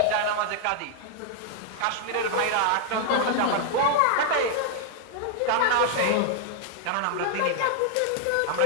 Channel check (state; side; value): different; both; correlation 0.00